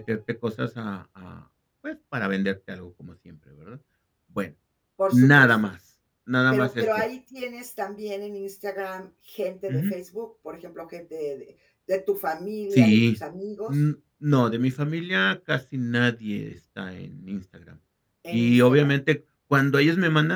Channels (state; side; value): identical; both; correlation 1.00